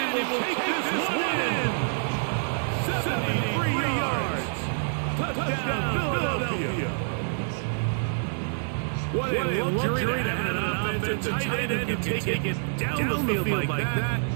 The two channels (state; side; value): silent; left; digital silence